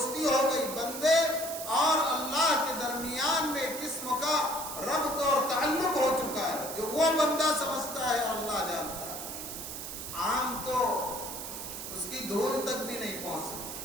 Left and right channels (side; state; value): right; noise; hiss, 8 dB below the sound